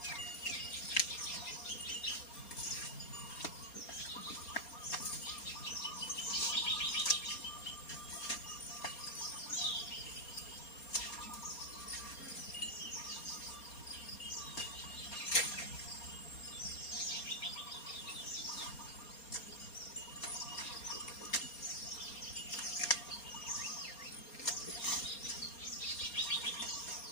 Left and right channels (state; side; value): late; right; 4.3 ms